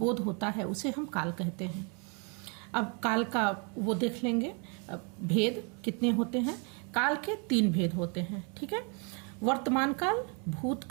होता है उसे हम काल कहते हैं। अब काल का वो देख लेंगे। भेद कितने होते हैं? काल के 3 भेद होते हैं, ठीक है। वर्तमान काल,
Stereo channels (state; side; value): quieter; left; 36.0 dB